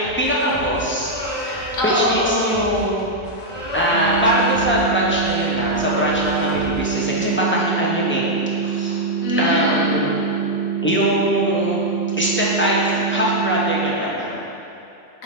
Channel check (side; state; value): both; normal; correlation -0.03